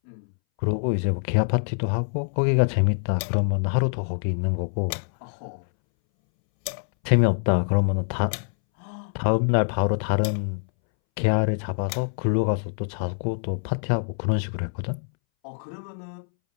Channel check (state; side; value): silent; right; 62 dB below the other